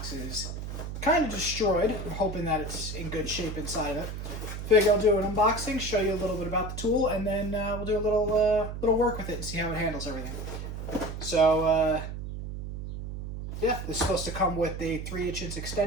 is kind of destroyed. I'm hoping that it's in good shape inside of it. Figure I'll do an unboxing, show you a little bit about the tool, and then we'll do a little work with it and see how it handles everything. So yeah, this is supposed to come with a 3/8 inch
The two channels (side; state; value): right; noise; hum, 7 dB below the sound